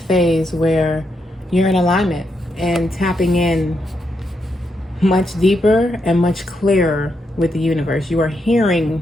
where you're in alignment and tapping in much deeper and much clearer with the universe. You are hearing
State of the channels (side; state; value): both; normal; correlation 0.81